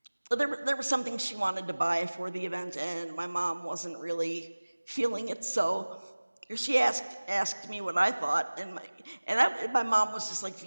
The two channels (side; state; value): both; inverted; correlation -1.00